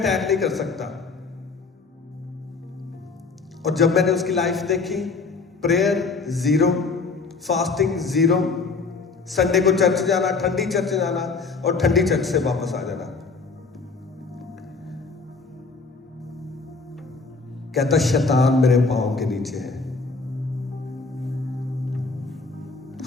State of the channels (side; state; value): right; quieter; 4.3 dB